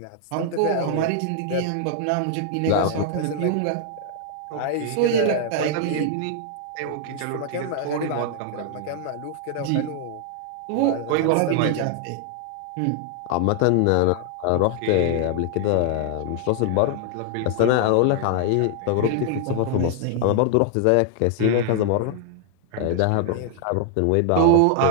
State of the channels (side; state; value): both; different; correlation 0.00